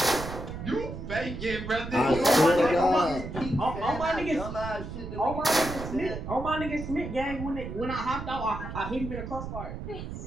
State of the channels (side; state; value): right; noise; rumble, 8 dB below the sound